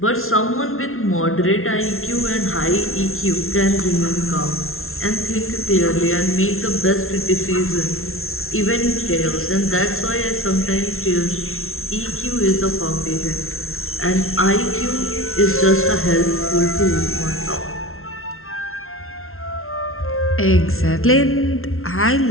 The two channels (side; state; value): right; late; 0.62 ms